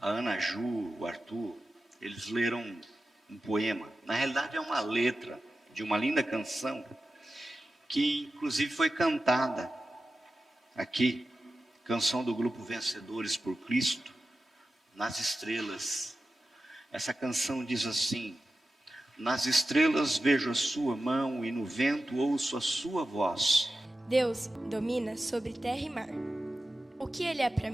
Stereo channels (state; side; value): normal; both; correlation 0.93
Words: a Ana Ju, o Arthur, eles leram um poema. Na realidade é uma letra de uma linda canção, que inclusive foi cantada aqui, canção do grupo Vencedores por Cristo, nas estrelas. Essa canção diz assim: nas estrelas vejo a sua mão e no vento ouço a sua voz. Deus domina sobre terra e mar. O que Ele é para